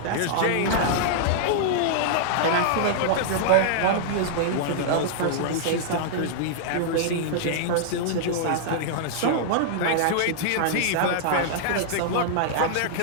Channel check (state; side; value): different; both; correlation -0.01